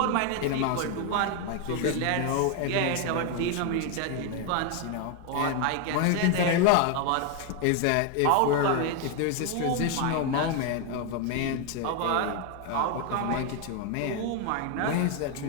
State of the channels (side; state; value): both; different; correlation 0.01